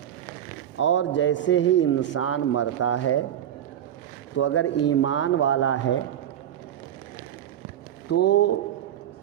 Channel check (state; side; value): quieter; left; 10.7 dB